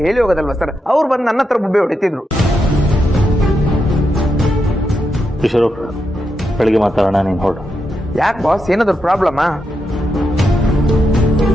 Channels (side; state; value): both; normal; correlation 0.84